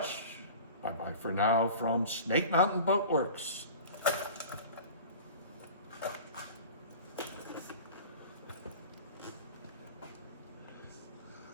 Bye-bye for now from Snake Mountain Boat Works.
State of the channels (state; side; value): inverted; both; correlation -0.38